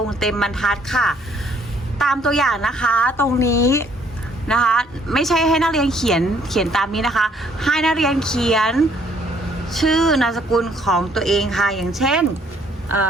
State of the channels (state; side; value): normal; both; correlation 0.64